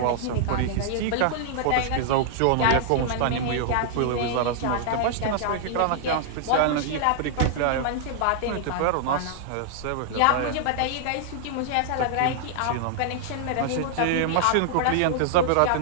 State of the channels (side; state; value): both; different; correlation -0.01